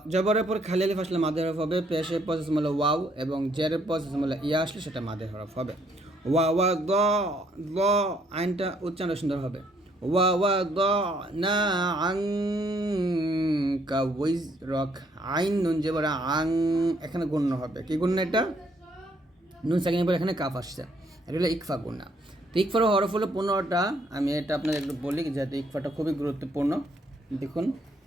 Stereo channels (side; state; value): both; normal; correlation 0.69